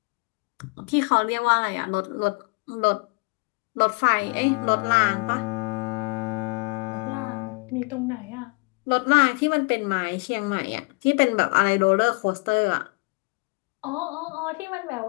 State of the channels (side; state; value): right; quieter; 30.4 dB